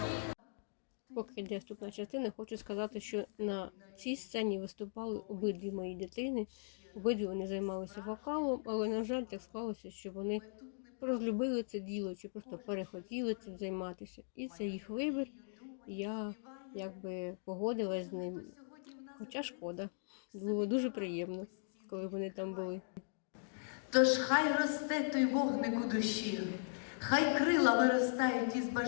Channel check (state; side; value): silent; right; digital silence